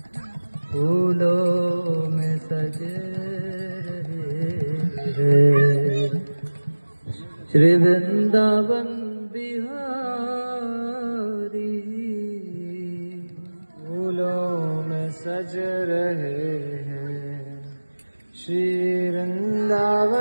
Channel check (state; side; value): inverted; both; correlation -1.00